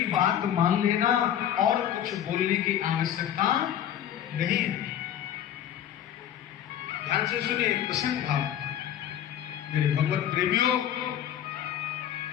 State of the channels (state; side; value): quieter; right; 10.5 dB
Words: बात मान लेना और कुछ बोलने की आवश्यकता नहीं है। ध्यान से सुनिए प्रसन्न भाव। मेरे भगवत प्रेमियों,